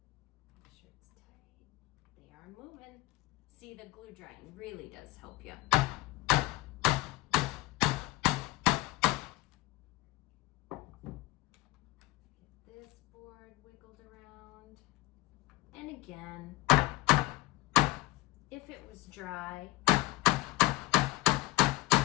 sure it's tight. They are moving. See, the glue drying really does help you. Get this board wiggled around. And again, if it was dry,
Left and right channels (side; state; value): right; quieter; 19.6 dB